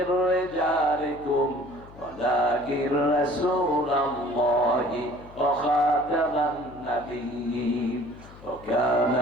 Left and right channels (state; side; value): noise; left; hum, 20 dB below the sound